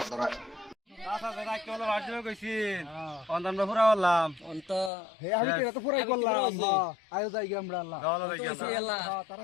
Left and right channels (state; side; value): drops out; right; at 4.9 s